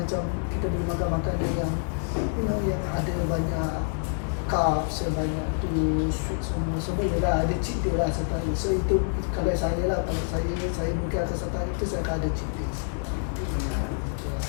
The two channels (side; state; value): right; silent; 60 dB below the other